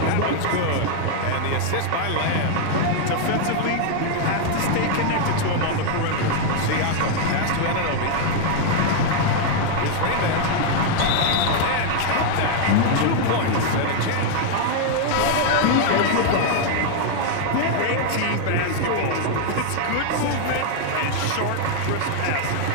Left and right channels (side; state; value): both; different; correlation 0.00